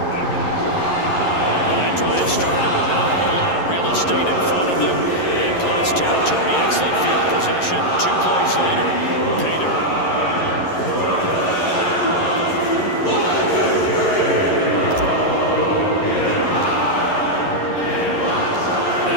that drive started with not a whole lot of real estate in front of them. In Klutz territory, excellent field position. 2 plays later, pay dirt.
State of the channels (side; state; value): right; late; 11 ms